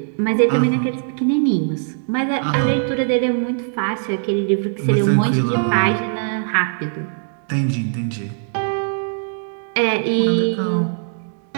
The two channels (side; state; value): left; silent; digital silence